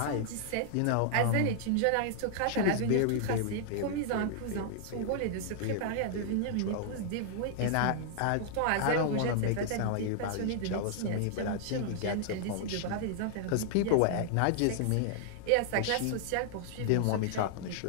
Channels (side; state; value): both; different; correlation -0.01